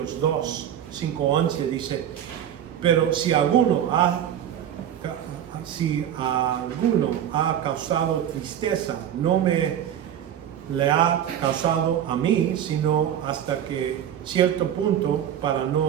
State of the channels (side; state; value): left; quieter; 10.1 dB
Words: 2, 5-11, dice, pero si alguno ha causado tristeza, no le ha causado a mí, sino hasta que cierto punto, para